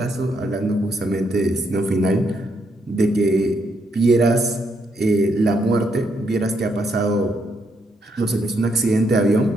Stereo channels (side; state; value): both; normal; correlation 0.76